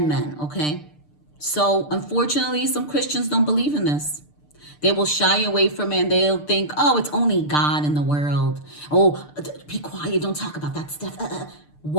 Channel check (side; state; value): right; late; 6.7 ms